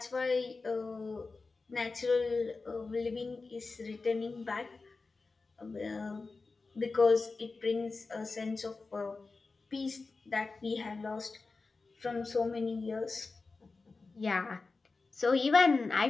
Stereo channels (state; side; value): quieter; right; 4.0 dB